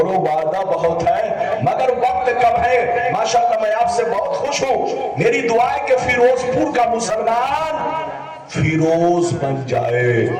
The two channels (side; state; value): both; identical; correlation 1.00